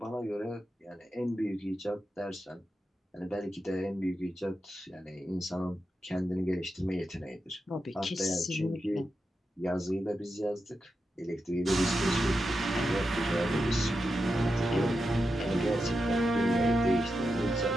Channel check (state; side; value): normal; both; correlation 0.88